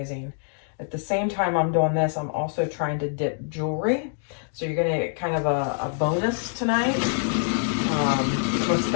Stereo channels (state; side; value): silent; right; 62 dB below the other